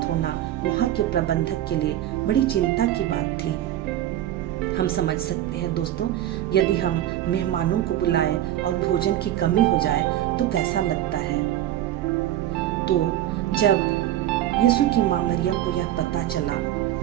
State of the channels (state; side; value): quieter; left; 12.7 dB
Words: होना वहाँ के प्रबंधक के लिए बड़ी चिंता की बात थी। हम समझ सकते हैं दोस्तों, यदि हम मेहमानों को बुलाए और भोजन की कमी हो जाए तो कैसा लगता है। तो जब यीशु की मां मरियम को यह पता चला